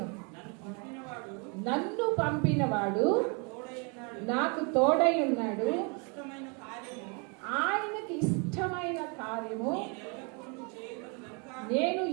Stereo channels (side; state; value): left; quieter; 34.2 dB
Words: నన్ను పంపినవాడు నాకు తోడై ఉన్నాడు, ఆయనకి ఇష్టమైన కార్యము నేను